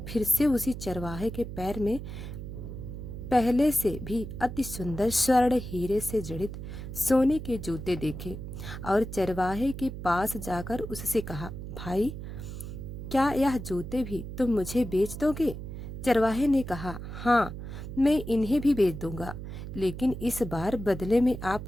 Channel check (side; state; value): right; noise; hum, 9 dB below the sound